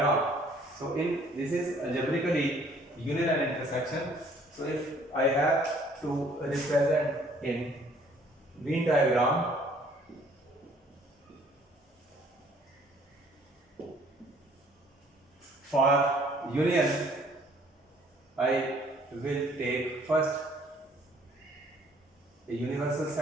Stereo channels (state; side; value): normal; both; correlation 0.59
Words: so in this is algebraically union and intersection. So if I have to represent in Venn diagram, for union I will take first a universal